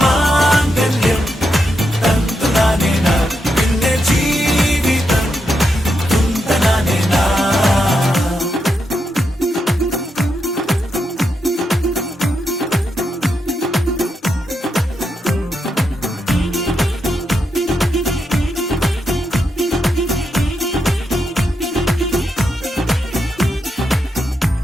മാംഗല്യം തന്തുനാനേന പിന്നെ ജീവിതം തുന്തനാനേന.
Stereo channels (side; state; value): both; normal; correlation 0.83